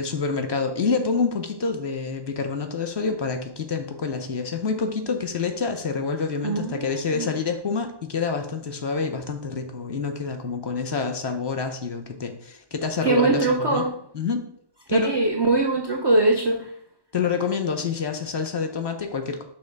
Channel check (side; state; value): left; late; 1.2 ms